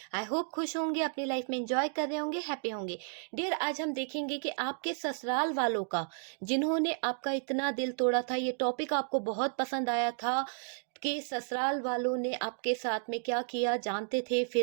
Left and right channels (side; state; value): left; silent; 56 dB below the other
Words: आई होप खुश होंगे, अपनी लाइफ में एंजॉय कर रहे होंगे, हैप्पी होंगे। डियर, आज हम देखेंगे कि आपके ससुराल वालों का, जिन्होंने आपका इतना दिल तोड़ा था, ये टॉपिक आपको बहुत पसंद आया था कि ससुराल वालों ने आपके साथ में क्या किया, जानते थे